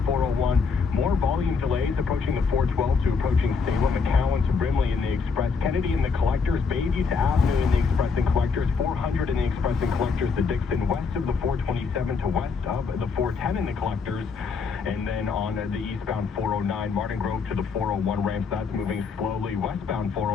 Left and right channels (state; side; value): quieter; right; 5.2 dB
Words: 401, more volume delays approaching the 412 to approaching Salem, McCowan to Brimley in the express. Kennedy and the collectors, Bayview to Avenue in the express and collectors, 400 in the express and collectors to Dixon, west of the 427 to west of the 410 in the collectors. And then on the eastbound 409, Martin Grove to the 401 ramps, that's moving slowly. Westbound